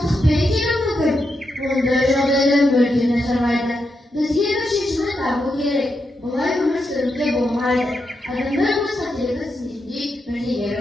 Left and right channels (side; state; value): both; normal; correlation 0.84